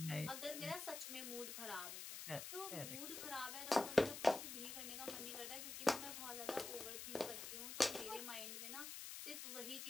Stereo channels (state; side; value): noise; left; hiss, 6 dB below the sound